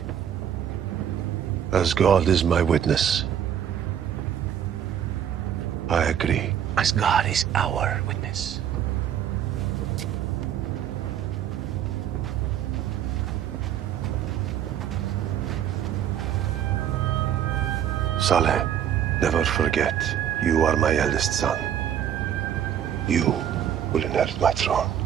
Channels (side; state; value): left; quieter; 9.6 dB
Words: As God is my witness, I agree. As God is our witness. Saleh, never forget, you are my eldest son. You will inherit my throne.